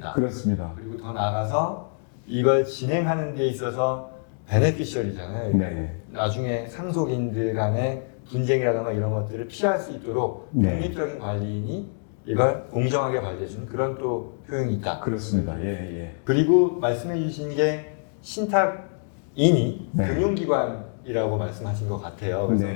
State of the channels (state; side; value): silent; right; digital silence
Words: 그렇습니다. 그리고 더 나아가서 이걸 진행하는 데 있어서 베네피셜이잖아요. 네. 나중에 상속인들 간의 분쟁이라든가 이런 것들을 피할 수 있도록 네. 독립적인 관리인이 이걸 공정하게 관리해주는 그런 또 효용이 있다. 그렇습니다. 예, 예. 그리고 말씀해 주신 게 신탁인이 네. 금융기관이라고 말씀하신 것 같아요.